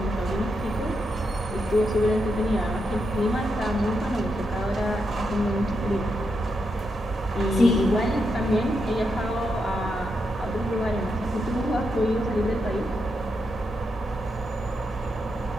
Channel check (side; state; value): both; normal; correlation 0.83